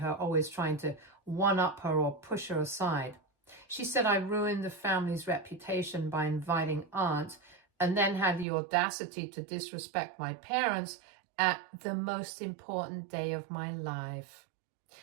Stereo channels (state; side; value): drops out; left; at 8.5 s